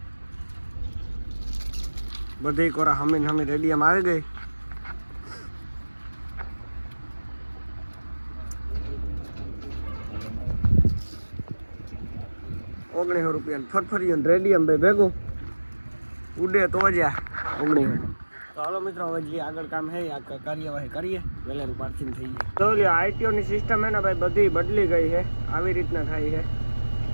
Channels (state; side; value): inverted; both; correlation -1.00